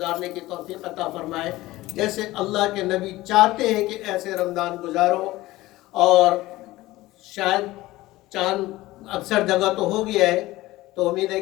کی توفیق عطا فرمائے جیسے اللہ کے نبی چاہتے ہیں کہ ایسے رمضان گزارو. اور شاید چاند اکثر جگہ تو ہو گیا ہے، تو امید ہے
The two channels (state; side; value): quieter; right; 18.0 dB